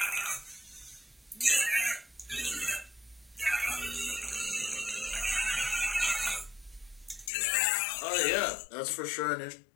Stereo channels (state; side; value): drops out; right; at 7.3 s